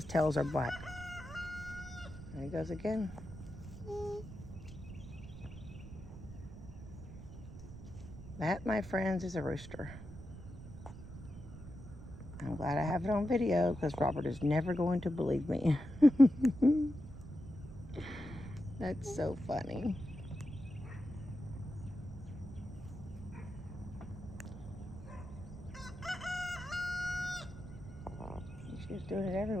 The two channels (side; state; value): right; noise; rumble, 12 dB below the sound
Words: tails are black. There he goes again. That, my friends, is a rooster. I'm glad I have it on video because Robert is never going to believe me. That's so funny. She's doing it